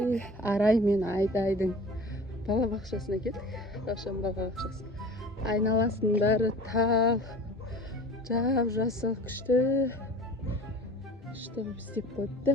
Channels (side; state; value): both; normal; correlation 0.40